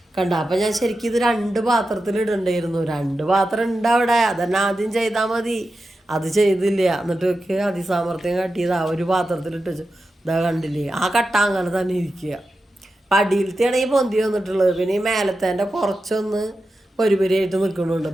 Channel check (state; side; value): normal; both; correlation 0.91